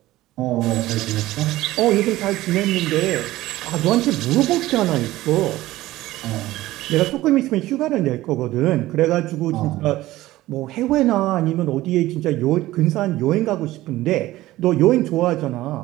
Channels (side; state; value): left; quieter; 16.6 dB